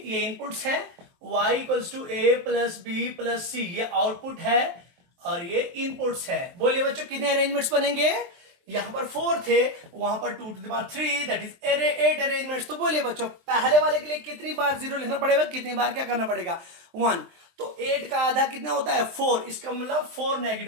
इनपुट्स है, y = a + b + c ये आउटपुट है, और ये इनपुट्स है। बोलिए बच्चों कितने अरेंजमेंट्स बनेंगे, यहां पर 4 थे, वहां पर 2 to the power 3 that is 8 arrangements. तो बोलिए बच्चों पहले वाले के लिए कितनी बार 0 लिखना पड़ेगा, कितनी बार क्या करना पड़ेगा, 1। तो 8 का आधा कितना होता है, 4, इसका मतलब 4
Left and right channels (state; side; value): late; left; 23 ms